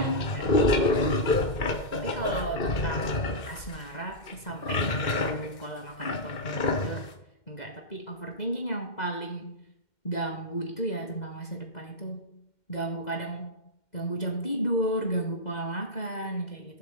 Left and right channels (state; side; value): late; right; 2.1 ms